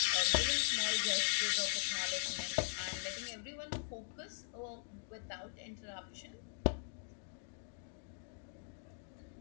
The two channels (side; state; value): right; silent; digital silence